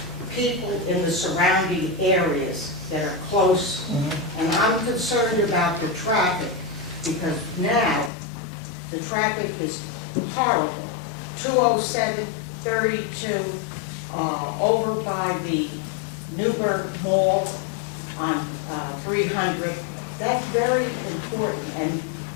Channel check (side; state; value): right; drops out; at 8.1 s